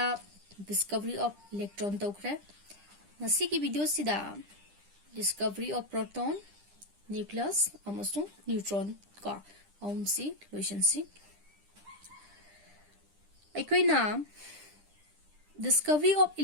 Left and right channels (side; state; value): left; late; 10 ms